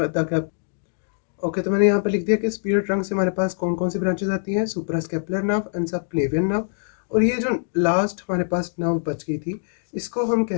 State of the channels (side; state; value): right; silent; digital silence